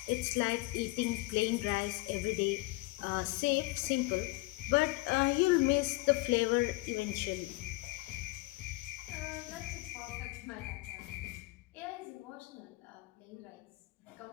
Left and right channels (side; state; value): right; quieter; 22.1 dB